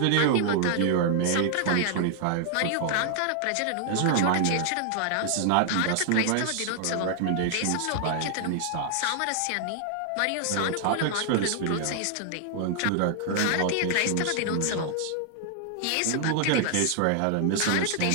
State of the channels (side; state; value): both; different; correlation 0.00